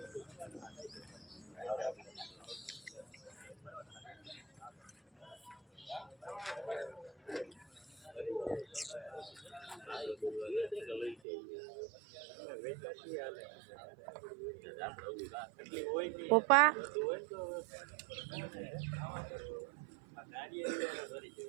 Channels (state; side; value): drops out; left; at 11.2 s